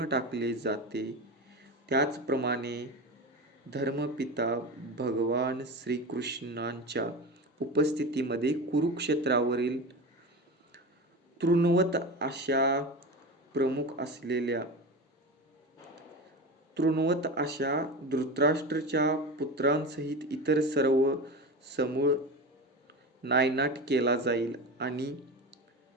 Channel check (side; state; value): both; normal; correlation 0.26